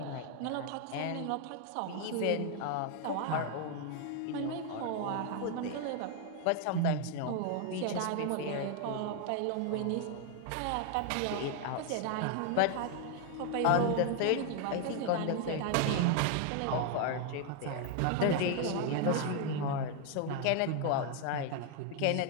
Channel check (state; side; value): different; both; correlation 0.00